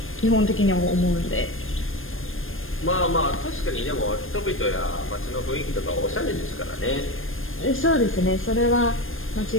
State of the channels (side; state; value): right; late; 0.59 ms